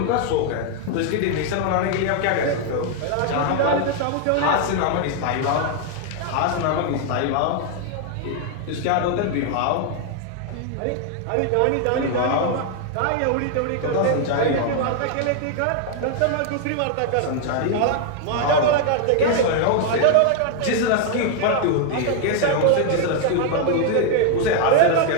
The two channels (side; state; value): both; different; correlation 0.00